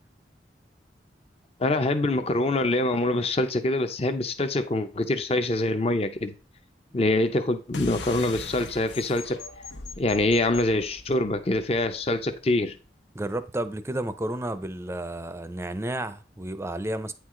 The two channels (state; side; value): normal; both; correlation 0.58